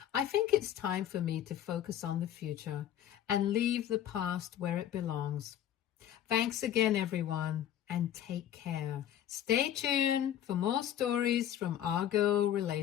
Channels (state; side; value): quieter; right; 10.9 dB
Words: I think it's time for me to focus on the future and leave the past where it belongs. Thanks again, everyone, and take care. Stay tuned for more stories from our girl